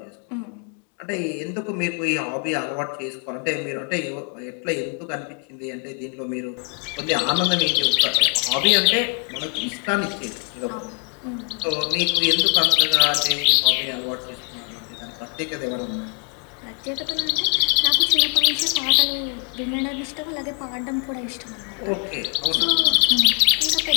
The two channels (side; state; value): right; quieter; 32.2 dB